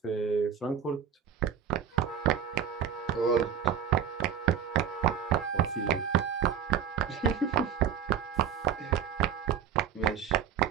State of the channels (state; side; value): quieter; left; 8.4 dB